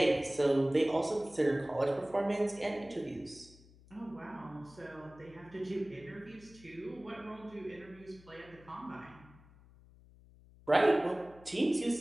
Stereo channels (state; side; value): noise; left; hum, 24 dB below the sound